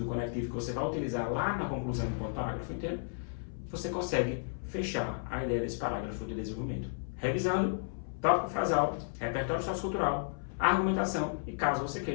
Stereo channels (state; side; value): silent; right; 56 dB below the other